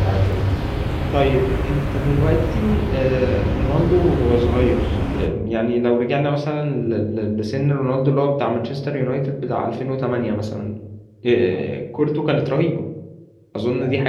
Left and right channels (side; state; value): both; identical; correlation 1.00